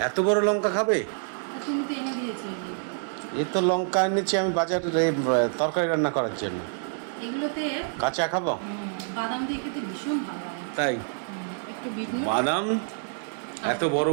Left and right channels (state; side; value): silent; left; digital silence